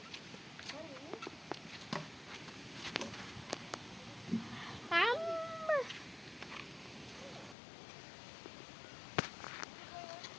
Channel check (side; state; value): right; drops out; at 7.6 s